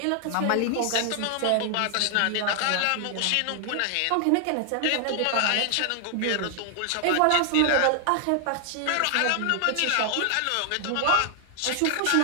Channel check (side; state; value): both; different; correlation 0.00